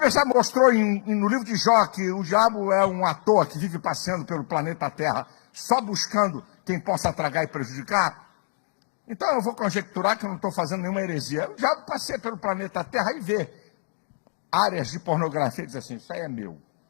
já mostrou no livro de Jó, que o diabo é um ator que vive passeando pelo planeta Terra, só buscando quem possa tragar e prejudicar. Então eu vou conjecturar que eu não estou fazendo nenhuma heresia. O diabo passeia pelo planeta Terra e vê áreas de pornografia e diz assim, isso aí é meu.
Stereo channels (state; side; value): silent; right; digital silence